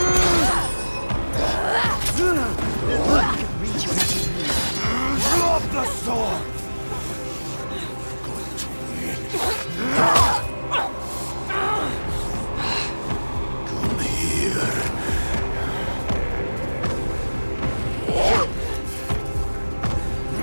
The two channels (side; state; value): both; inverted; correlation -1.00